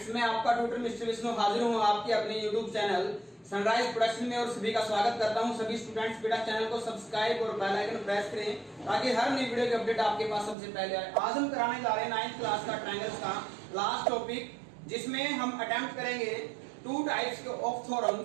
मैं आपका tutor mister Vishnu हाजिर हूँ आपके अपने यूट्यूब चैनल सनराइज प्रोडक्शन में और सभी का स्वागत करता हूँ। सभी स्टूडेंट्स बेटा चैनल को सब्सक्राइब और बेल आइकन प्रेस करें ताकि हर नई वीडियो की अपडेट आपके पास सबसे पहले आए। आज हम कराने जा रहे हैं 9th क्लास का ट्रायंगल्स का लास्ट टॉपिक, जिसमें हम अटेम्प्ट करेंगे 2 टाइप्स के ऑफ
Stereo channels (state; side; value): drops out; left; at 10.6 s